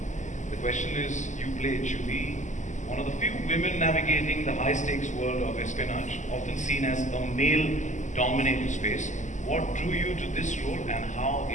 The question is, you play Juhi, one of the few women navigating the high-stakes world of espionage, often seen as a male-dominated space. What drew you to this role, and how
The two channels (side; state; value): right; late; 0.35 ms